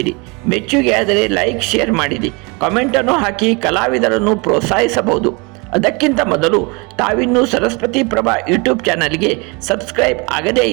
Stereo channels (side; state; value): left; quieter; 28.9 dB